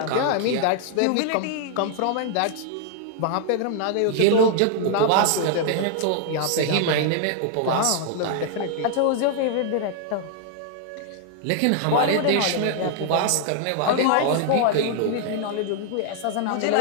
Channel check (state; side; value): different; both; correlation 0.00